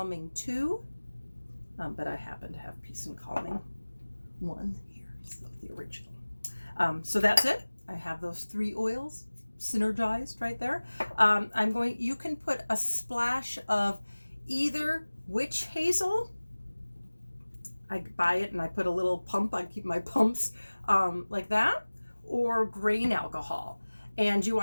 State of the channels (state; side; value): inverted; both; correlation -1.00